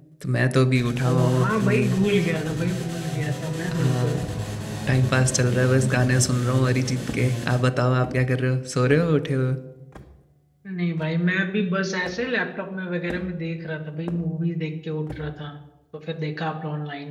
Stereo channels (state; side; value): identical; both; correlation 1.00